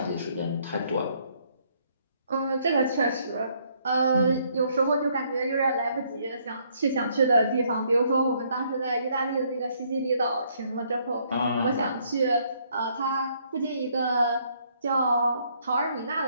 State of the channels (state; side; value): inverted; both; correlation -0.68